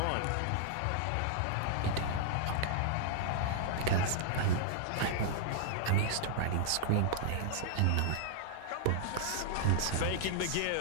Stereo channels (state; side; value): different; both; correlation -0.01